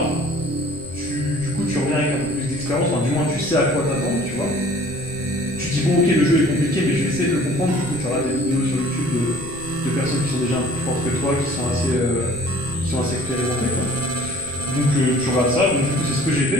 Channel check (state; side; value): noise; left; rumble, 18 dB below the sound